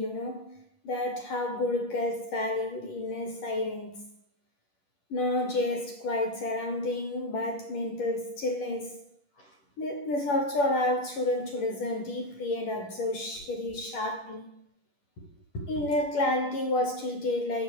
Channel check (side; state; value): right; late; 10 ms